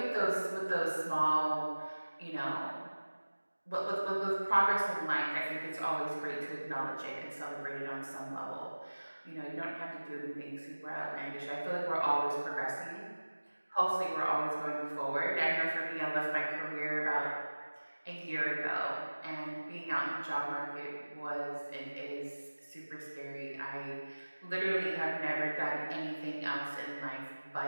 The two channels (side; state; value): both; inverted; correlation -1.00